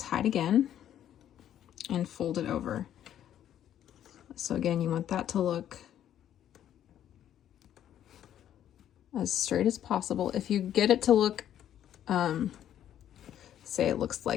again and fold it over. So again, you want that to look as straight as possible. If you get it to look, say it looks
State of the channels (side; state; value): right; quieter; 10.8 dB